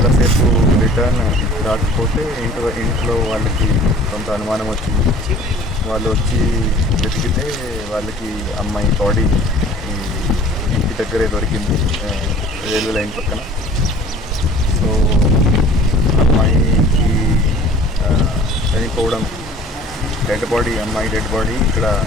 రిటర్న్ రాకపోతే ఇంట్లో వాళ్ళకి కొంత అనుమానం వచ్చింది. వాళ్ళు వచ్చి వెతికితే వాళ్ళకి అమ్మాయి బాడీ ఇంటి దగ్గరే దొరికింది, రైల్వే లైన్ పక్కన. సో అమ్మాయికి చనిపోవడం, అమ్మాయి డెడ్ బాడీ ఇక్కడ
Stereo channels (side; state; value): both; normal; correlation 0.49